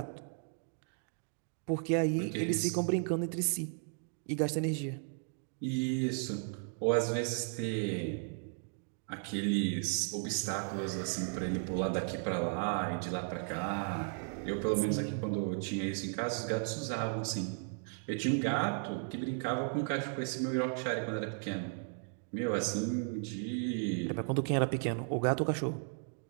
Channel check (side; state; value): left; silent; 54 dB below the other